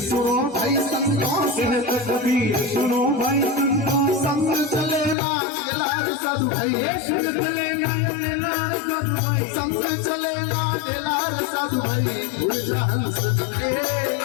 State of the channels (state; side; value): drops out; right; at 5.2 s